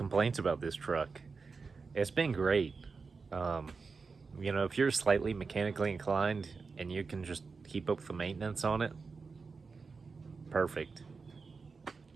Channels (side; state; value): left; quieter; 4.7 dB